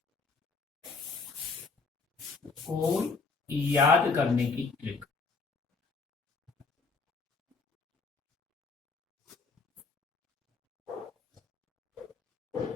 को याद करने की ट्रिक।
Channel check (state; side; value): quieter; right; 4.4 dB